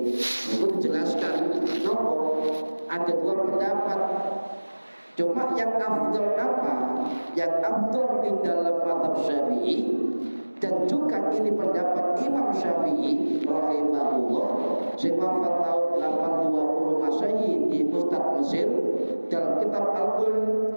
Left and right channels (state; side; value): inverted; both; correlation -1.00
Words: dijelaskan nopo ada dua pendapat. Cuma yang afdal apa? Yang afdal di dalam mazhab Syafi'i, dan juga ini pendapat Imam Syafi'i rahimahullah sing wafat tahun 820 Masehi di Pusat Mesir. Dalam kitab Al-Qum